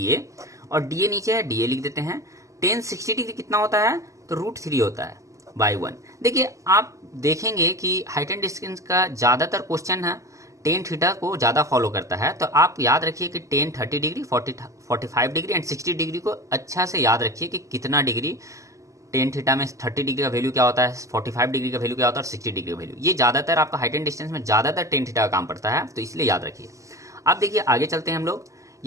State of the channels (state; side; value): late; left; 0.16 ms